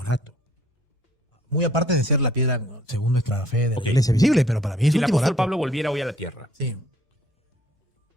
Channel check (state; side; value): normal; both; correlation 0.60